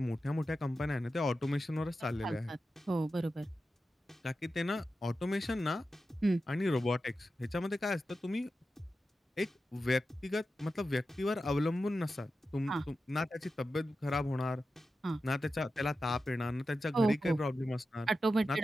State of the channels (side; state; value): both; normal; correlation 0.91